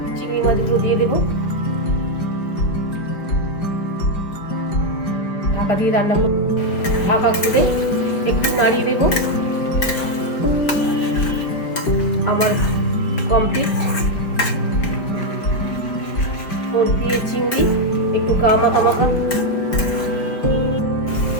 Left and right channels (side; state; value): right; late; 5.0 ms